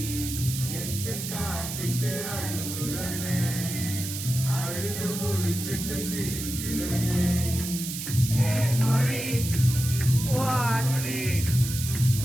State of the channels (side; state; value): right; noise; hiss, 6 dB below the sound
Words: எட்டு காட்டிட்டு அழுகுறனே, அழுது முடிச்சிட்டு சிரிக்கிறனே. மொழி வாடி